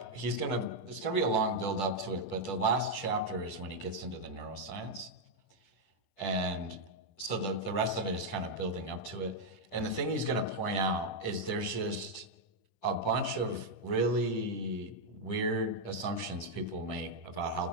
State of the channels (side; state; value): right; late; 10 ms